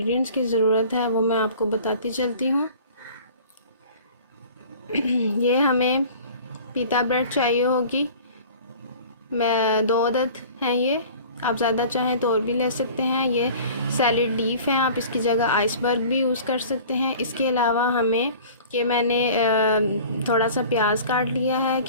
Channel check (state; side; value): inverted; both; correlation -0.44